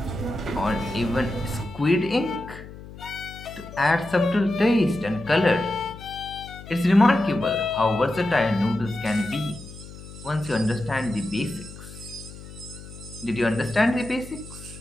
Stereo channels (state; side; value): noise; left; hum, 15 dB below the sound